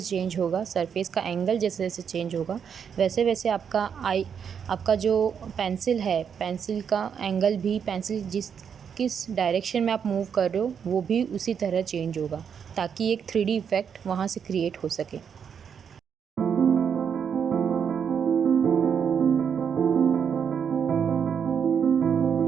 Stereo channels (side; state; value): left; quieter; 7.3 dB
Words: चेंज होगा, सरफेस का एंगल जैसे जैसे चेंज होगा, वैसे वैसे आपका जो पेंसिल है, पेंसिल का एंगल भी, पेंसिल किस डायरेक्शन में आप मूव कर रहे हो वो भी उसी तरह चेंज होगा, ताकि एक 3D इफ़ेक्ट वहाँ से क्रिएट हो सके।